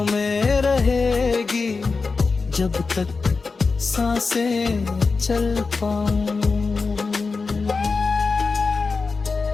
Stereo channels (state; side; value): quieter; right; 4.4 dB